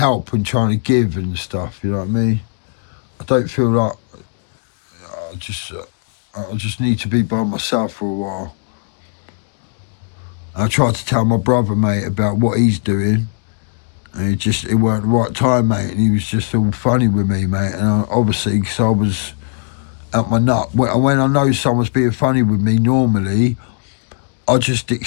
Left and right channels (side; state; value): right; silent; digital silence